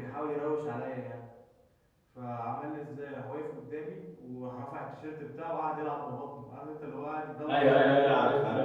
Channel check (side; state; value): both; identical; correlation 1.00